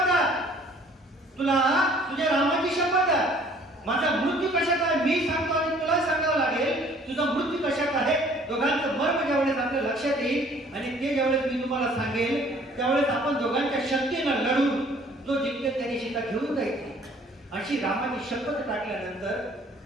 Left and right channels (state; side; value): normal; both; correlation 0.56